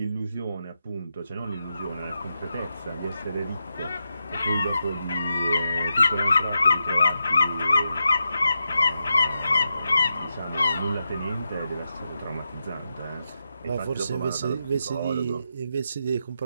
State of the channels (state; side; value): inverted; both; correlation -0.87